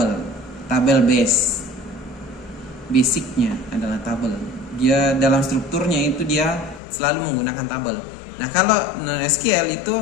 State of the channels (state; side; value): drops out; right; at 6.8 s